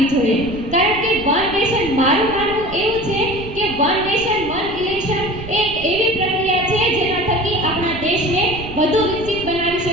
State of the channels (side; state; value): right; noise; rumble, 14 dB below the sound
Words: જોઈએ, કારણ કે વન નેશન, મારું માનવું એવું છે કે વન નેશન વન ઇલેક્શન એક એવી પ્રક્રિયા છે જેના થકી આપણા દેશને વધુ વિકસિત બનાવી